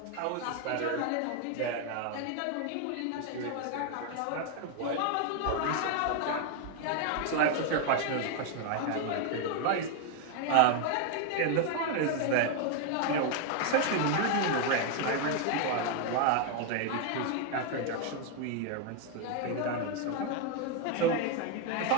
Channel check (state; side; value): different; both; correlation 0.01